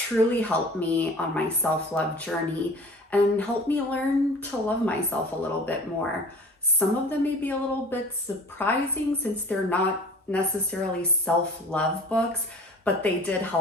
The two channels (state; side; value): normal; both; correlation 0.43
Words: helped me on my self-love journey and helped me learn to love myself a little bit more. Some of them may be a little bit surprising since they're not necessarily self-love books, but they did